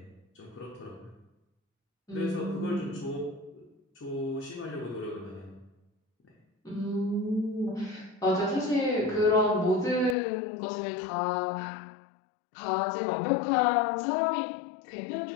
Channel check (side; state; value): right; drops out; at 10.2 s